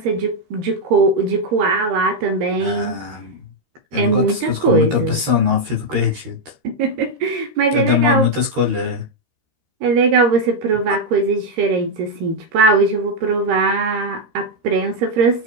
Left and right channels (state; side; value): late; left; 13 ms